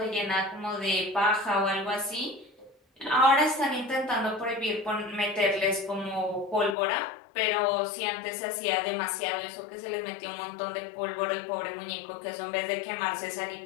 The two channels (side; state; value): right; drops out; at 6.8 s